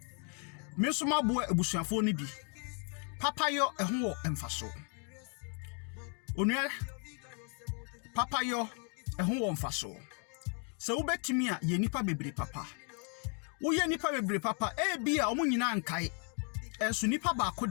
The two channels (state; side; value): quieter; right; 38.5 dB